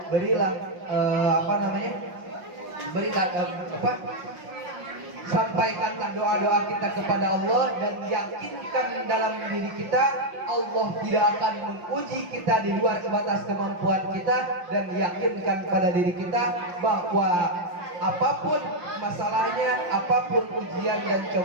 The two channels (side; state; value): left; late; 5.7 ms